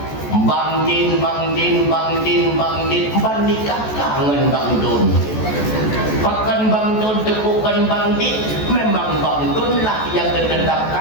Bangdin bandikah kangen Bang Dun. Pakan Bang Dun bukan Bangdin, memang Bang Dun lah yang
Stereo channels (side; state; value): right; late; 14 ms